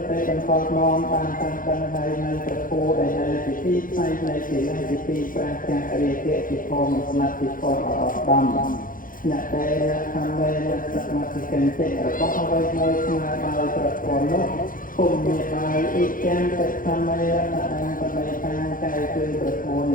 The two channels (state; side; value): late; right; 0.40 ms